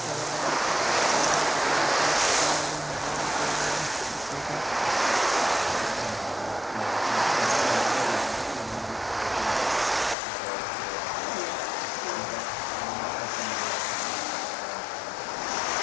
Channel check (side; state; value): right; drops out; at 10.2 s